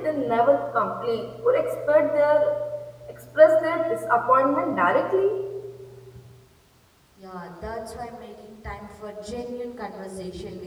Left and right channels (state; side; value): identical; both; correlation 1.00